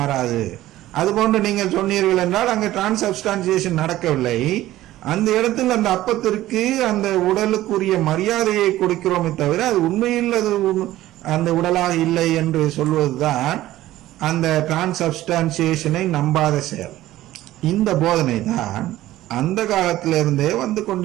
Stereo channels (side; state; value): left; quieter; 15.2 dB